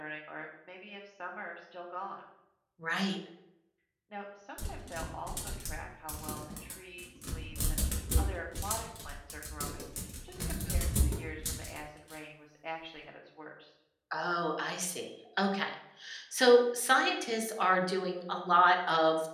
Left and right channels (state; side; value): identical; both; correlation 1.00